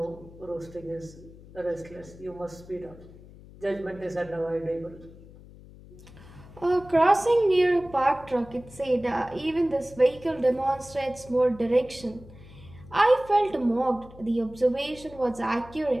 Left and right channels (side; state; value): left; noise; hum, 20 dB below the sound